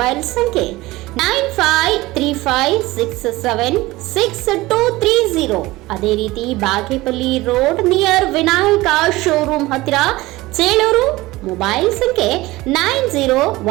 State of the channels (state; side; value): quieter; left; 19.4 dB